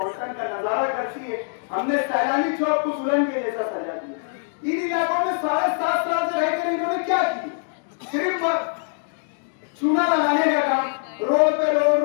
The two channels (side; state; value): right; silent; digital silence